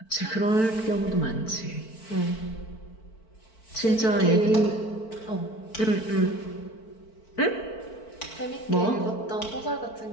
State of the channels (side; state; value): right; late; 4.5 ms